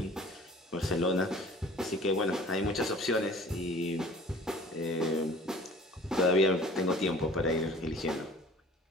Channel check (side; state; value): both; normal; correlation 0.47